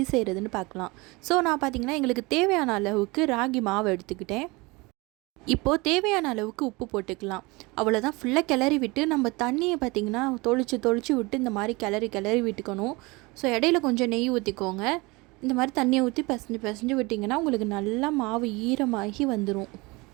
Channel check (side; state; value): left; quieter; 24.6 dB